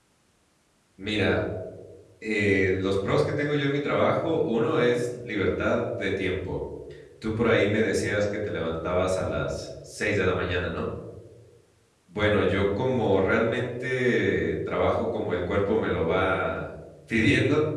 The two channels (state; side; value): identical; both; correlation 1.00